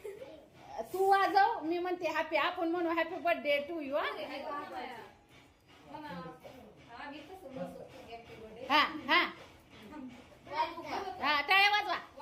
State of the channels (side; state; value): both; identical; correlation 1.00